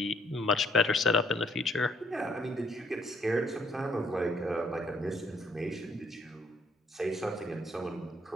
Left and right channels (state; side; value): normal; both; correlation 0.67